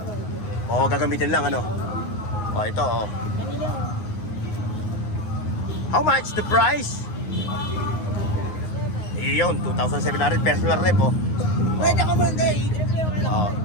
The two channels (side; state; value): right; late; 9.6 ms